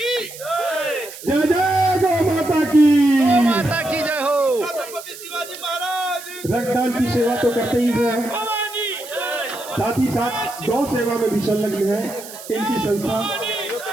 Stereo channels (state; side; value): noise; right; hiss, 14 dB below the sound